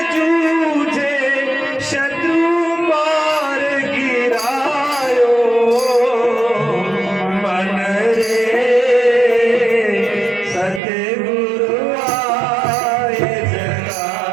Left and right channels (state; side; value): drops out; left; at 10.8 s